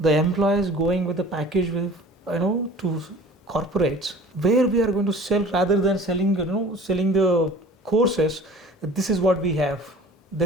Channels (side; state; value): both; normal; correlation 0.44